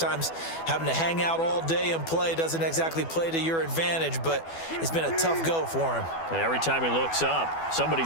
having to hang out all day and play doesn't exactly play to your advantage, but it's been a tough go for him. And every time he looks up,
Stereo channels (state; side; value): late; right; 12 ms